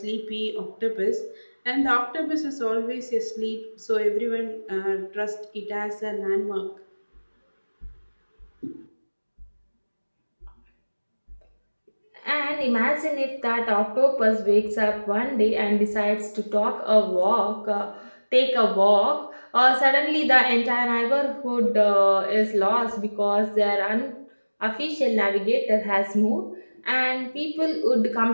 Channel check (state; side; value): inverted; both; correlation -1.00